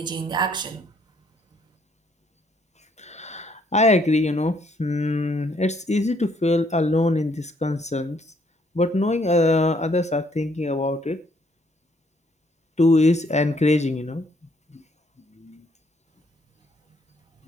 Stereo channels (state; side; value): normal; both; correlation 0.68